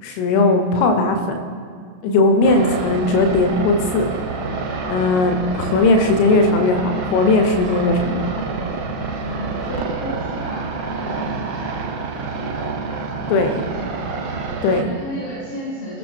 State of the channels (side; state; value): right; late; 33 ms